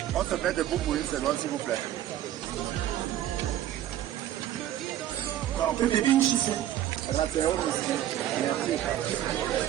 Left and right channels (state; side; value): quieter; left; 12.3 dB